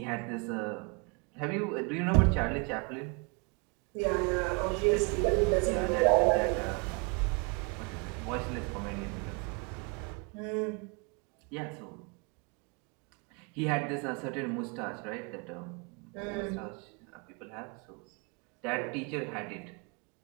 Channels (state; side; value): quieter; left; 32.3 dB